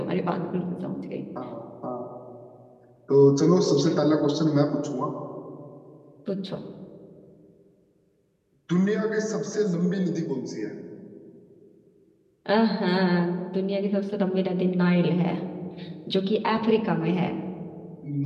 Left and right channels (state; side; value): identical; both; correlation 1.00